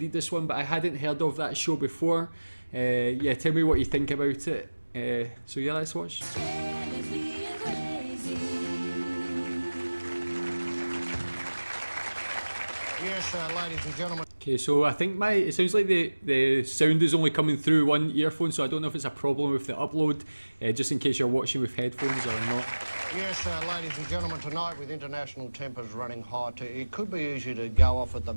this one, but I hadn't heard of that show before. Yeah, tell me what you think about it. So yeah, let's watch. Yes, ladies and gentlemen. Okay, so I think it sounds like the sound is only coming through one earphone, so I don't know if it's a problem with the upload, just in case you're watching with headphones or not. Yes, ladies and gentlemen, tonight with international tempers running hot, it could be easy to go off at the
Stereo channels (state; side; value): inverted; both; correlation -1.00